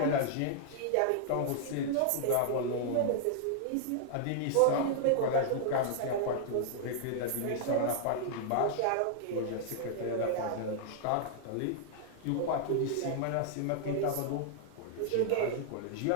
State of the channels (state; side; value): different; both; correlation -0.01